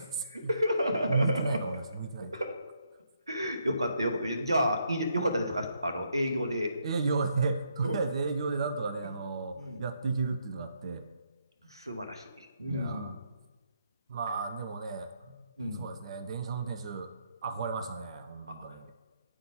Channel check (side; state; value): both; inverted; correlation -0.75